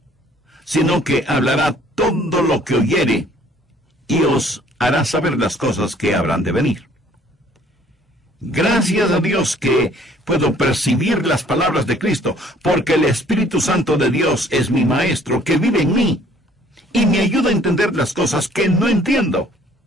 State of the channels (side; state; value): both; normal; correlation 0.58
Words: sino que hablará todo lo que oyere, y os hará saber las cosas que habrán de venir. Gracias a Dios que puedo percibir las palabras de Cristo, porque el Espíritu Santo de Dios es mi Maestro, que vive en mí, y me ayuda a entender las cosas que no entiendo.